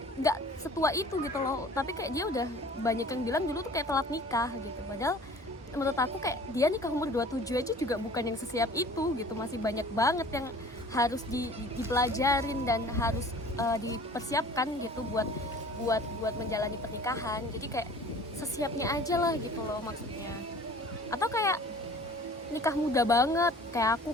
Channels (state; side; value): normal; both; correlation 0.47